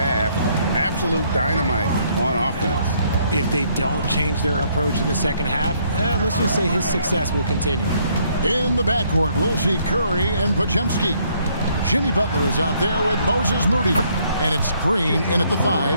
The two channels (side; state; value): both; inverted; correlation -0.68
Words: Absolute dynamite on offense. If they don't change their approach in the second half, let's just say his success will continue. In the backcourt, we'll see Curry and Podziemski. Jimmy Butler is out there with Moses Moody. And it's Green in at the